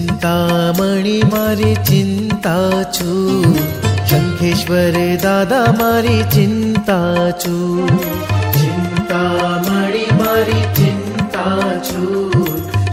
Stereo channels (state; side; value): identical; both; correlation 1.00